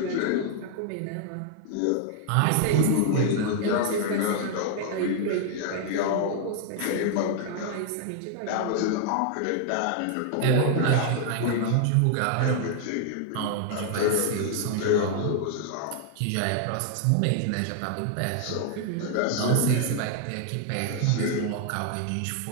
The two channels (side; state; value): both; different; correlation 0.00